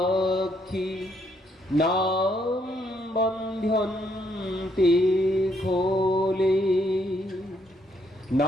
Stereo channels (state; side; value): normal; both; correlation 0.72